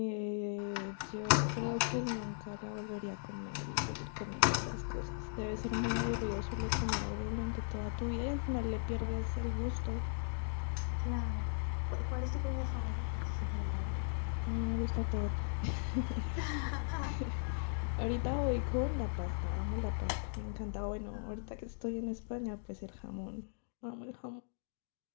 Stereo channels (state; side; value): silent; right; digital silence